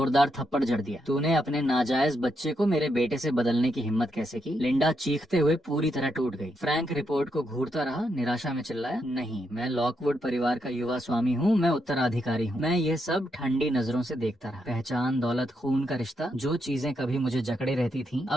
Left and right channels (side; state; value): both; normal; correlation 0.80